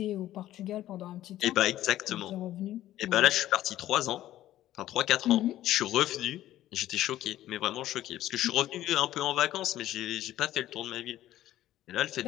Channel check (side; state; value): right; quieter; 13.7 dB